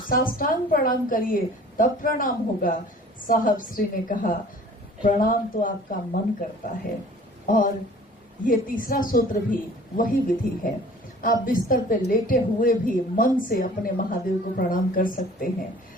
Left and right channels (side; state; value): both; normal; correlation 0.49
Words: साष्टांग प्रणाम करिए तब प्रणाम होगा। साहब श्री ने कहा प्रणाम तो आपका मन करता है। और ये तीसरा सूत्र भी वही विधि है। आप बिस्तर पे लेटे हुए भी मन से अपने महादेव को प्रणाम कर सकते हैं।